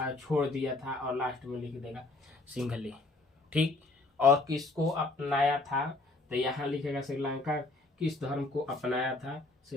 छोड़ दिया था, और लास्ट में लिख देगा सिंघली, ठीक। और किसको अपनाया था, तो यहाँ लिखेगा श्रीलंका किस धर्म को अपनाया था,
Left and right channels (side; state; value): right; quieter; 3.1 dB